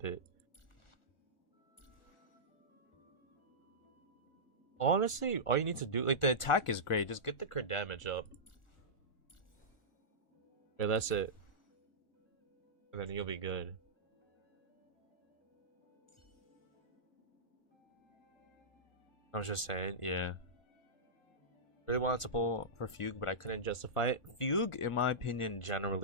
it. Honestly, all you need to do, like, the attack is great. Just get the crit damage up. Yeah, that's it. And then you'll be good. I was just saying, yeah. Really wanted to pull for Fugue, but I couldn't justify it. Fugue, in my opinion,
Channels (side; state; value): right; late; 1.4 ms